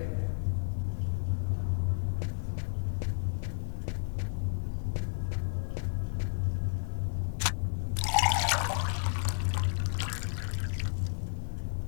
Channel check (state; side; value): silent; right; digital silence